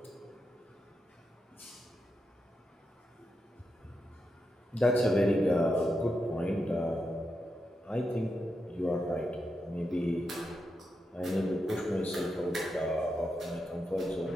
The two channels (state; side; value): normal; both; correlation 0.86